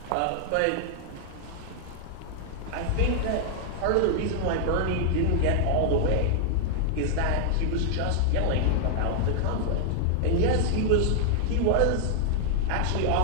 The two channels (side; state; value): both; different; correlation -0.01